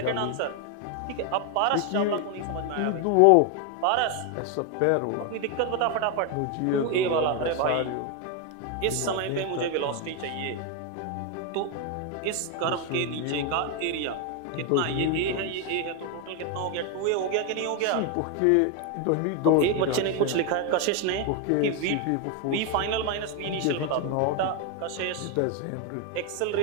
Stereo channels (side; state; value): both; different; correlation 0.01